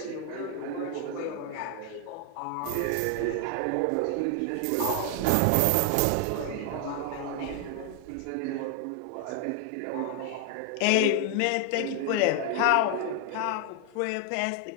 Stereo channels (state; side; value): different; both; correlation 0.00